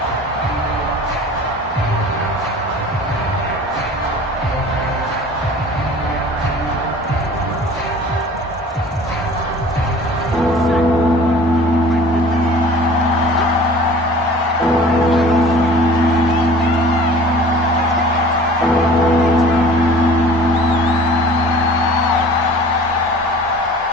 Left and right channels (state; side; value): normal; both; correlation 0.45